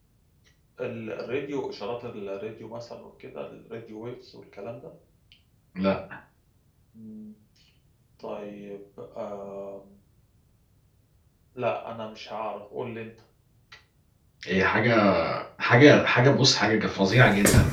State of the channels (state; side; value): identical; both; correlation 1.00